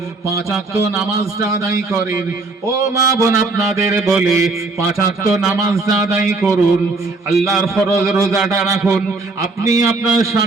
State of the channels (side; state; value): left; quieter; 3.6 dB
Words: 5 ওয়াক্ত নামাজটা আদায় করেন। ও মা বোন, আপনাদের বলে 5 ওয়াক্ত নামাজটা আদায় করুন, আল্লাহর ফরজ রোজাটা রাখুন, আপনি আপনার